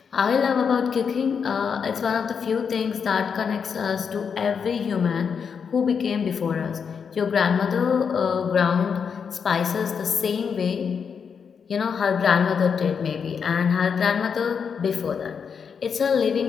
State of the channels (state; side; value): quieter; right; 6.5 dB